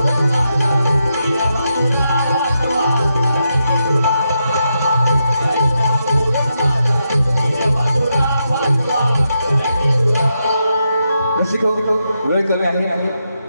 वेळ कमी आहे.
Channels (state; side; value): inverted; both; correlation -0.84